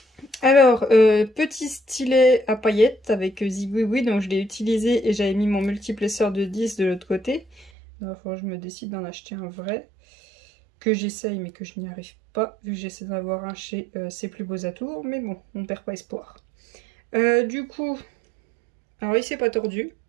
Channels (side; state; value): left; drops out; at 7.7 s